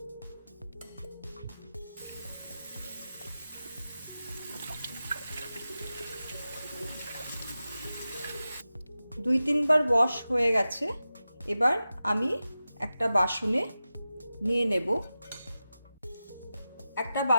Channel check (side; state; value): both; inverted; correlation -0.93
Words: দুই তিনবার ওয়াশ হয়ে গেছে। এবার আমি একটা বাসনে নিয়ে নেব। একটা